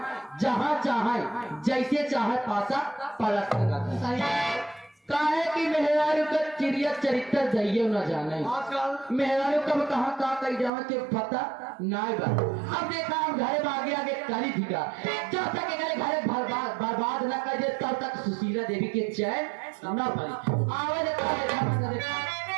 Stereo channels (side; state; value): left; drops out; at 10.7 s